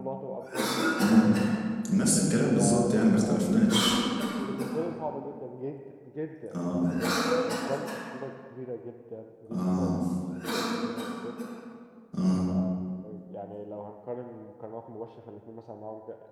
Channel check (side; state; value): both; identical; correlation 1.00